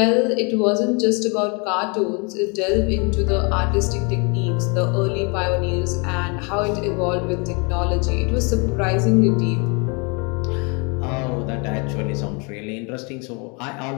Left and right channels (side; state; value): right; quieter; 32.4 dB